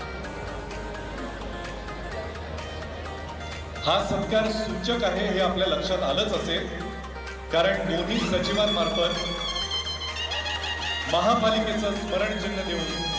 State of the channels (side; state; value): both; identical; correlation 1.00